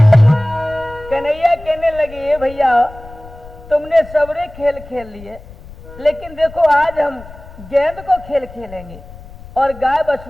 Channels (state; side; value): noise; left; rumble, 18 dB below the sound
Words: तुमने सबरे खेल खेल लिए, लेकिन देखो आज हम गेंद को खेल खेलेंगे और गाय